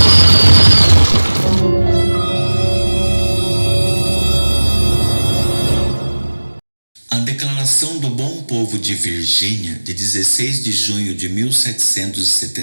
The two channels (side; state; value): both; inverted; correlation -1.00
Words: A Declaração do Bom Povo de Virgínia, de 16 de junho de